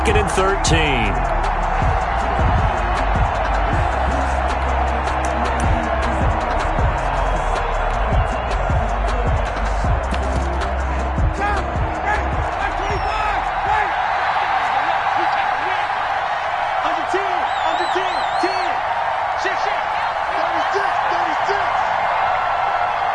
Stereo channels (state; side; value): identical; both; correlation 1.00